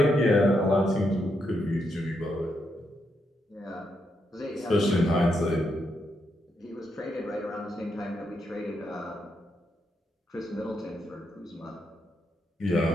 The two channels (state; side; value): normal; both; correlation 0.81